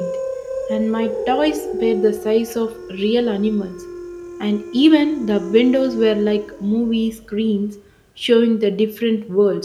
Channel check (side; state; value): both; identical; correlation 1.00